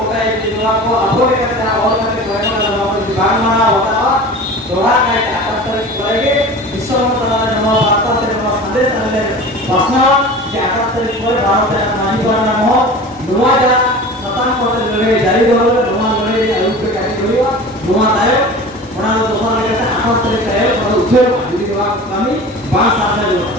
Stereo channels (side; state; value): both; normal; correlation 0.37